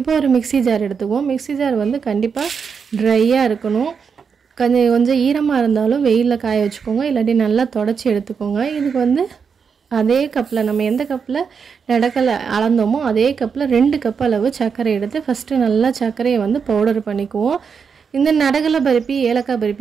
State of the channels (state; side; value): quieter; left; 6.2 dB